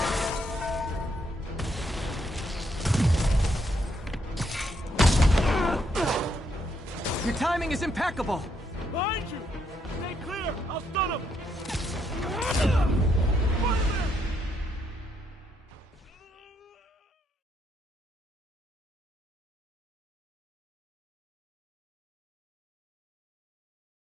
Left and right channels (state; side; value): normal; both; correlation 0.75